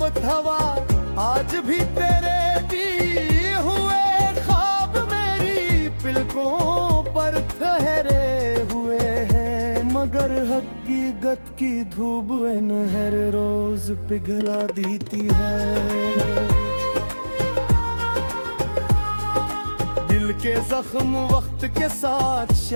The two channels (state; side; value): inverted; both; correlation -1.00